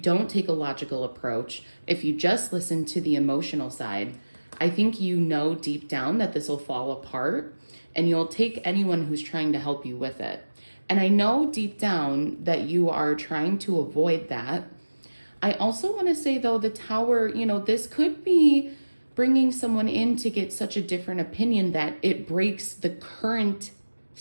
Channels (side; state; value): both; inverted; correlation -1.00